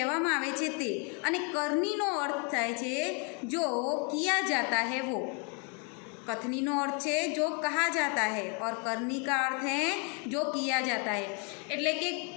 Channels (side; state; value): right; quieter; 36.3 dB